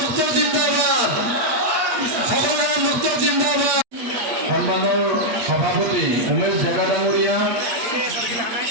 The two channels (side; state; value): left; late; 8.3 ms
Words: জিন্দাবাদ, সকল রাম ভক্ত জিন্দাবাদ। সন্মানৰ সভাপতি উমেশ ডেকা ডাঙৰীয়া,